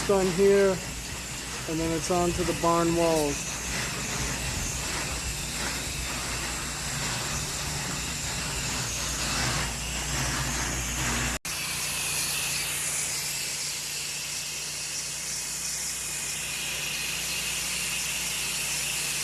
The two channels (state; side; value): identical; both; correlation 1.00